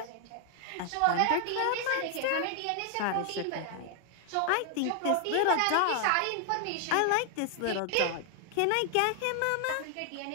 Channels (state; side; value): different; both; correlation 0.00